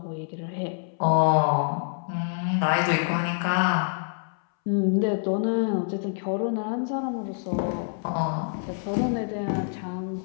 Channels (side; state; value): right; silent; 61 dB below the other